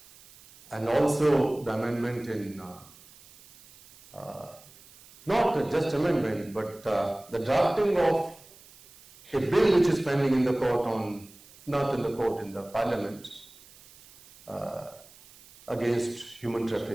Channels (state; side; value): noise; right; hiss, 24 dB below the sound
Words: and also the amendment in, not just amendment, but the drafting of a bill which is pending in the court on, not in the court, in the parliament, against human